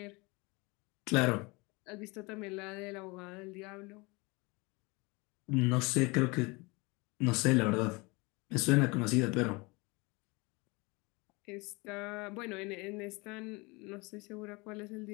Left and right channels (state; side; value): quieter; right; 26.3 dB